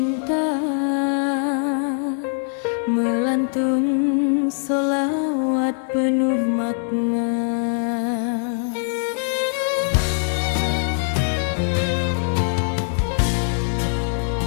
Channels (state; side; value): silent; right; digital silence